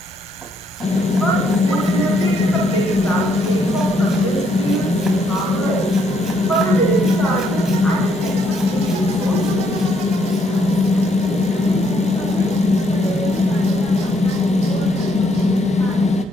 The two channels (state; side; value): normal; both; correlation 0.71